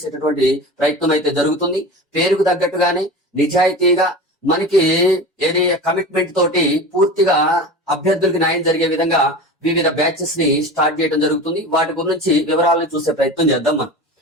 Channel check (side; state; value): both; normal; correlation 0.32